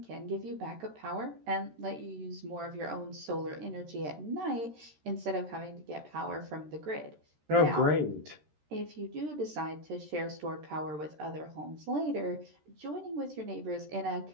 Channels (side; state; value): left; late; 13 ms